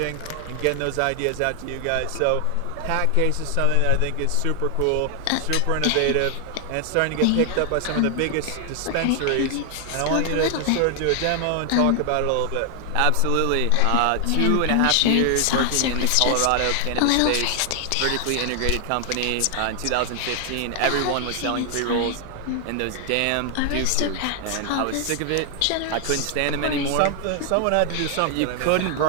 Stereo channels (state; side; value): different; both; correlation 0.00